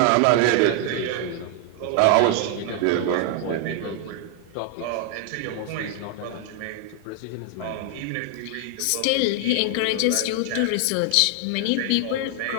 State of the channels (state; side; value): different; both; correlation 0.00